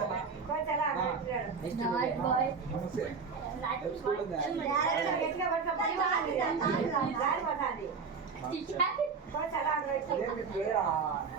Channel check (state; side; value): quieter; left; 5.3 dB